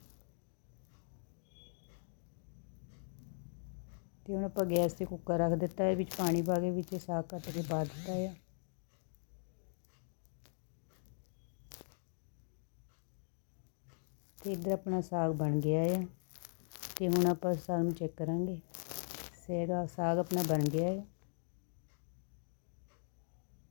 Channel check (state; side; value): silent; right; digital silence